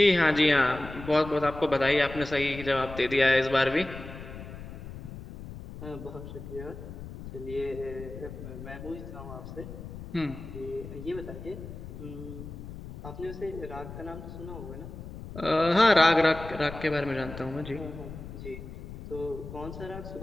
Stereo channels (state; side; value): noise; left; rumble, 12 dB below the sound